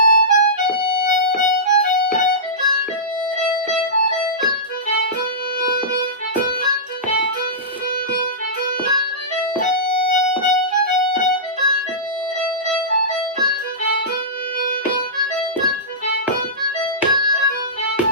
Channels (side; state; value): both; normal; correlation -0.18